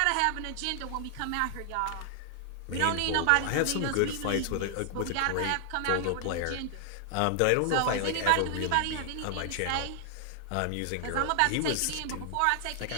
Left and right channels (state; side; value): different; both; correlation 0.00